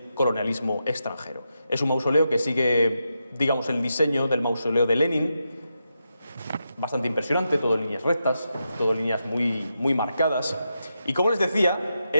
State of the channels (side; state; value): both; inverted; correlation -0.86